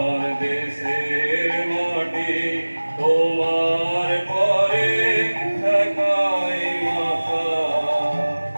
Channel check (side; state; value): both; inverted; correlation -1.00